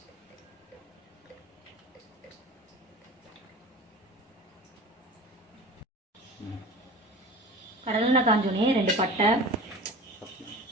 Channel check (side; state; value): both; normal; correlation 0.37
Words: கடலெண்ணெய் காஞ்சோடனே 2 பட்டை,